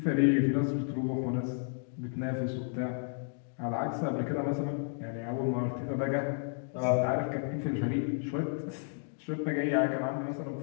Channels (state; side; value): silent; right; 56 dB below the other